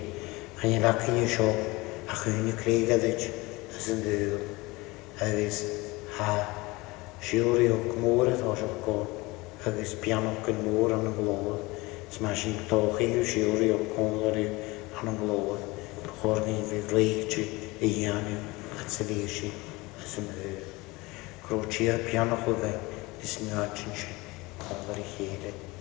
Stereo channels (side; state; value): right; quieter; 22.8 dB